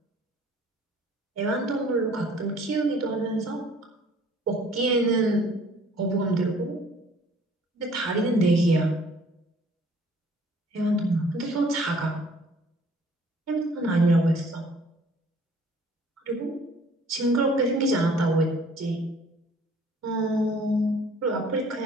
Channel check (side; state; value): both; normal; correlation 0.55